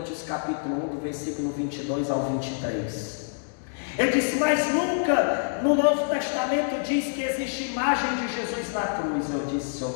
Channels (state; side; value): silent; right; digital silence